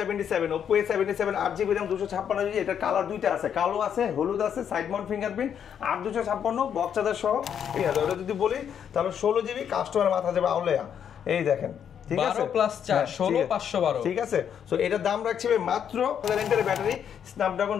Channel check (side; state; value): right; quieter; 8.5 dB